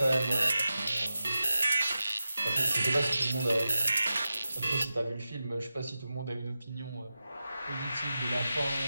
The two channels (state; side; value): inverted; both; correlation -0.92